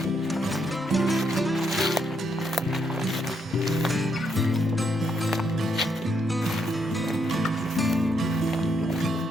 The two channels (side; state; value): both; normal; correlation 0.77